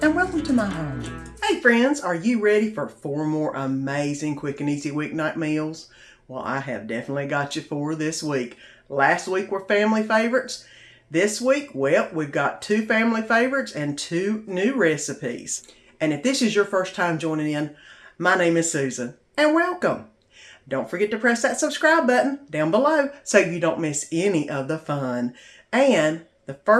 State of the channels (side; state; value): both; identical; correlation 1.00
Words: and welcome to my home. Hey, friends, are you ready for 4 more amazing quick and easy weeknight meals? Well, I have definitely got you 4 this week. Last week were family favorites. This week, well, we've got 2 family favorites and 2 new recipes. And if this is your first time joining in, my name is Susan, and welcome. Don't forget to press that subscribe button down below so you don't miss any of the fun. And the